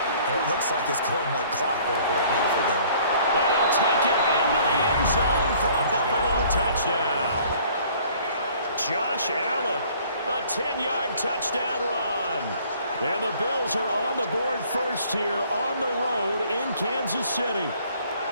it looks like it's going like clockwork right now for them. And he'll take it into the end zone for a Buffalo touchdown. Josh Allen, a 10-yard touchdown run. And the Bills are on the board first here on the road in Kansas City.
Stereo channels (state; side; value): inverted; both; correlation -0.56